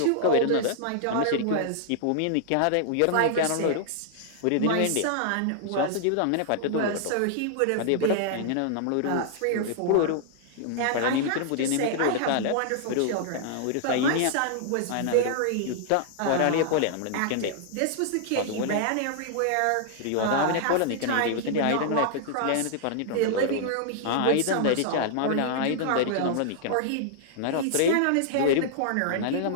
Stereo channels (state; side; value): different; both; correlation -0.01